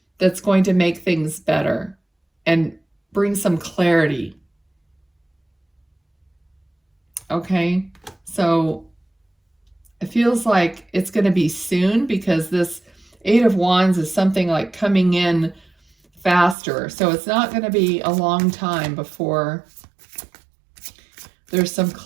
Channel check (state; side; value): drops out; left; at 16.6 s